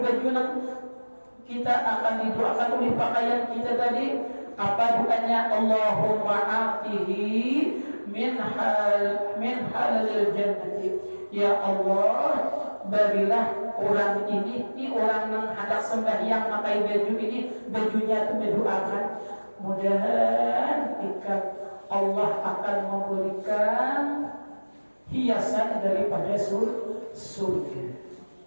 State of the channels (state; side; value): inverted; both; correlation -1.00